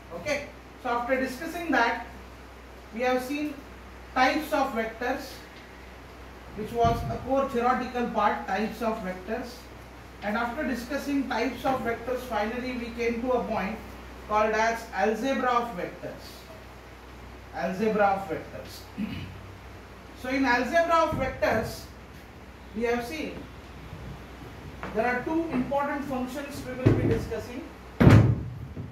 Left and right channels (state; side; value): identical; both; correlation 1.00